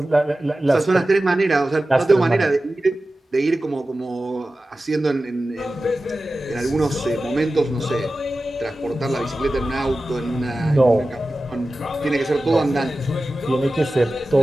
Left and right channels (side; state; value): both; normal; correlation 0.95